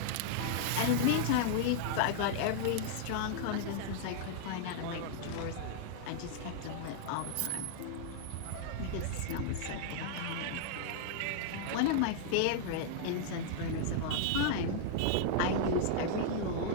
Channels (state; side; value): different; both; correlation -0.01